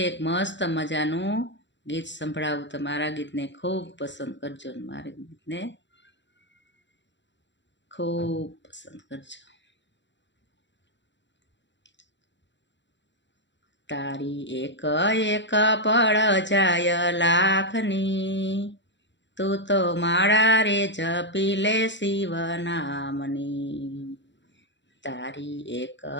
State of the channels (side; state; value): right; late; 0.53 ms